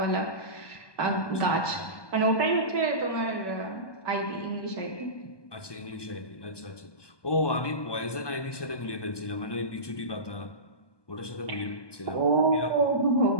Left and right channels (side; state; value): right; late; 1.2 ms